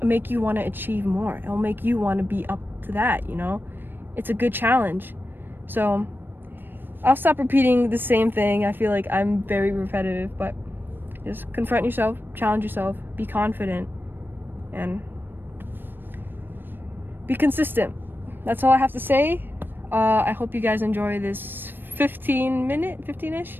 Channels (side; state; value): left; late; 0.096 ms